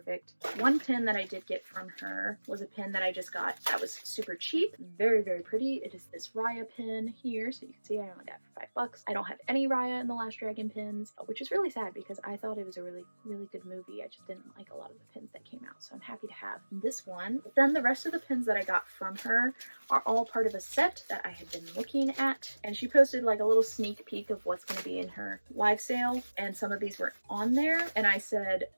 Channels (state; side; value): inverted; both; correlation -1.00